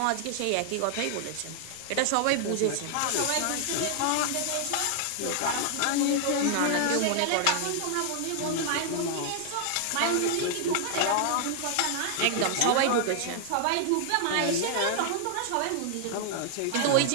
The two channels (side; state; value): both; different; correlation 0.00